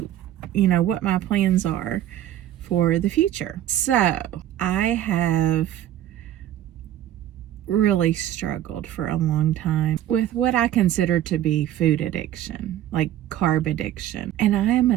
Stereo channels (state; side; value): quieter; left; 12.1 dB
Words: what my plans are for the future. So I have really struggled for a long time with what I consider to be food addiction, like carb addiction. And I am